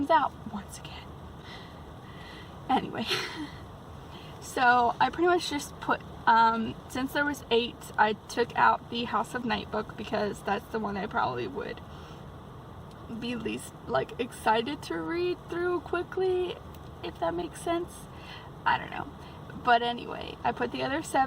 out once again. Anyway, so I pretty much just put, since there was 8, I took out the House of Night book because that's the one I probably would be least excited to read through quickly, if that makes sense. I don't know. But anyway, I put the other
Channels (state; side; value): identical; both; correlation 1.00